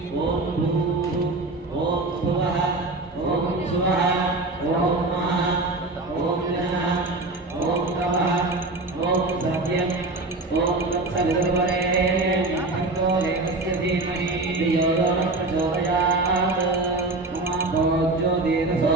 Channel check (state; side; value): quieter; left; 3.1 dB